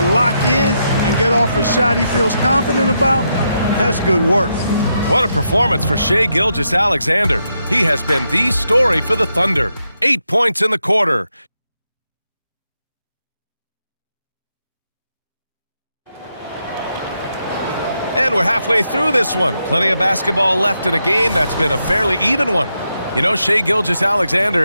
lock in and get off a shot he feels confident about, that's good work. What a performance for Shai Gilgeous-Alexander. He has been the story for the Thunder. 8 points in the quarter. And we're halfway through this one. Plenty of basketball left in a game that's been a fairly even one. You know, Shai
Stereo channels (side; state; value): both; inverted; correlation -0.82